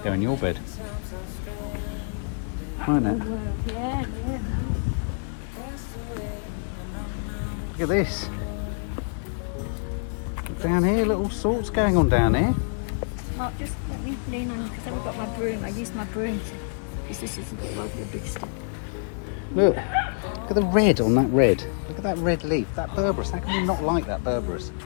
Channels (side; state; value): right; silent; 61 dB below the other